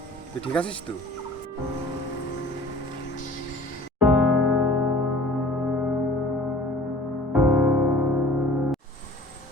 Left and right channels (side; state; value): both; normal; correlation 0.48